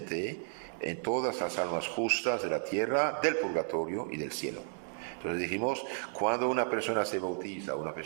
en todas las almas justas de la tierra, del purgatorio y del cielo. Entonces dijimos, cuando una persona se bautiza, una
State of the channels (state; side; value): silent; left; 56 dB below the other